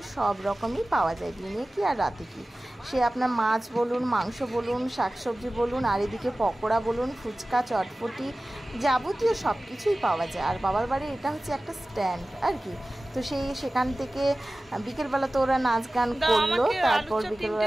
সব রকমই পাওয়া যায়, দিনে কি আর রাতে কি। সে আপনার মাছ বলুন, মাংস বলুন, শাকসবজি বলুন, আর এদিকে পকোড়া বলুন, ফুচকা, চটপটি, যাবতীয় সব কিছুই পাওয়া যায়। আর বাবার বাড়ি এটা হচ্ছে একটা স্ট্যান্ড আর কি। তো সেখান থেকে বিকেলবেলা তো ওরা নাচ গান করলো,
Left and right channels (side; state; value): both; normal; correlation 0.97